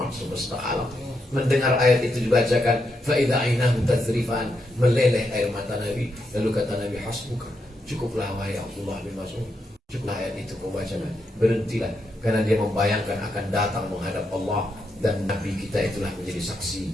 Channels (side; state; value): both; normal; correlation 0.82